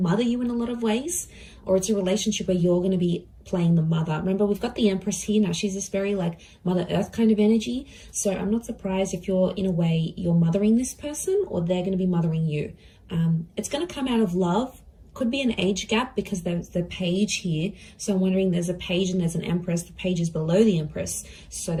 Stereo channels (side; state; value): both; identical; correlation 1.00